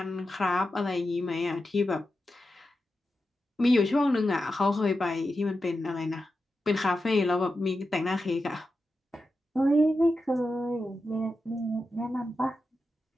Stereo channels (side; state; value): both; normal; correlation 0.90